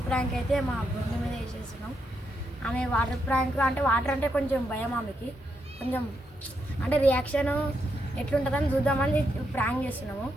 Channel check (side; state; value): both; normal; correlation 0.81